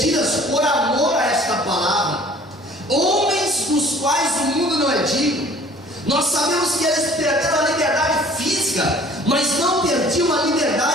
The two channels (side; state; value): both; normal; correlation 0.51